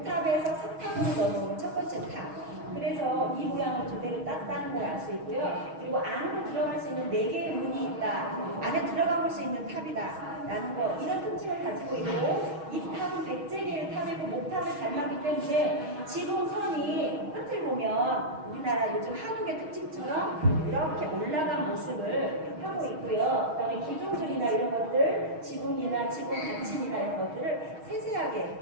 석탑으로 넘어오는 첫 번째 탑. 그래서 이 모양을 그대로 땄다는 걸 알 수 있고요. 그리고 안으로 들어갈 수 있는 4개의 문이 있다. 안에 들어가 볼 수 있는 탑이다. 라는 거. 이런 특징을 가지고 있고 이 탑은 백제계의 탑이고 목탑을 닮았기 때문에 지붕선이 끝을 보면 우리나라 요즘 한옥의 특징처럼 이렇게 올라간 모습을 하고 있고요. 그 다음에 기둥들이나 이런 것들, 지붕이나 지붕 받침이나 이런 것들을 세세하게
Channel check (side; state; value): left; late; 6.3 ms